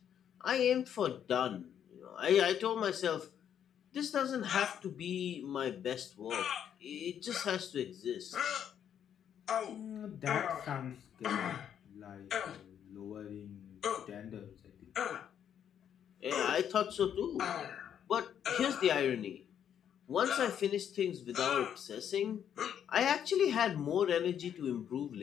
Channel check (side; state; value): right; quieter; 9.1 dB